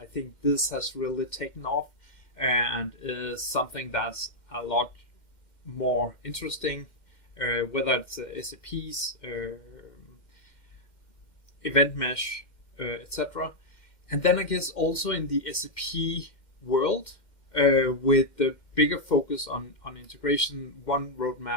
think this has really taken off and is something that's a lot more interesting, whether it's SAP's event mesh, etc. And then I guess also in the SAP world, with the bigger focus on integration, one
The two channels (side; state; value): right; late; 2.1 ms